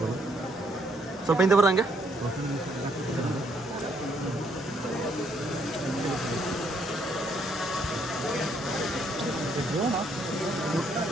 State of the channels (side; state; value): both; normal; correlation 0.70